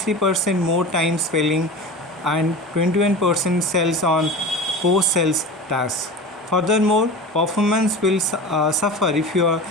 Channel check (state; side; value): normal; both; correlation 0.32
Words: more time spelling and 21% sales on post-sales tasks. Furthermore, performance will suffer if your